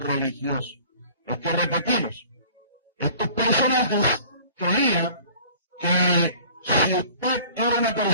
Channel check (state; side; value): inverted; both; correlation -0.49